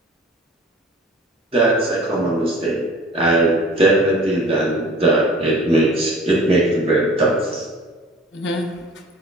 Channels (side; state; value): both; normal; correlation 0.45